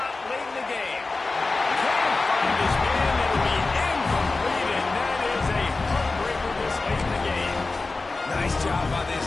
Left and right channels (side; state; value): right; quieter; 3.6 dB